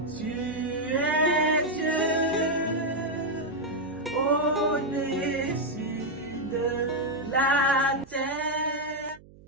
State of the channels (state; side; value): noise; right; hum, 23 dB below the sound